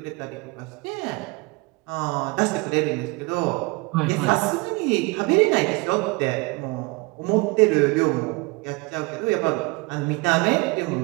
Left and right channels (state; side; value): quieter; left; 26.4 dB